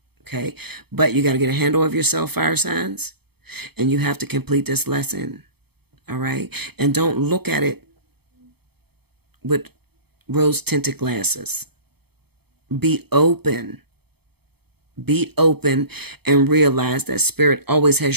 Okay, but you got to get a handle of yourself, fire signs, and you have to complete this lesson. All right, and don't look at it with rose-tinted glasses. Be open. Be open and realize that Spirit always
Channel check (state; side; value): late; left; 0.97 ms